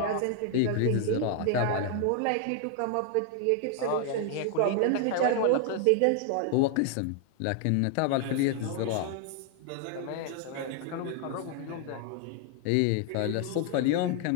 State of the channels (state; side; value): different; both; correlation 0.00